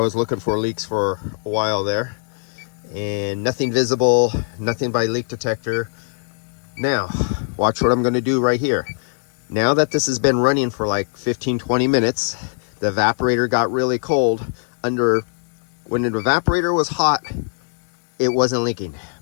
looking for leaks for a while there, and nothing visible, nothing by leak detector. Now, watch what I'm going to do right here. Now that this has been running for like 15-20 minutes, the evaporator got really cold. When the evaporator was hot, it wasn't leaking.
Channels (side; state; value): right; silent; 57 dB below the other